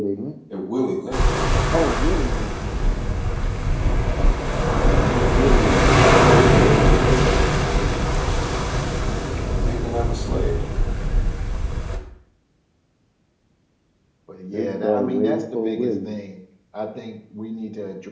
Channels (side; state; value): both; identical; correlation 1.00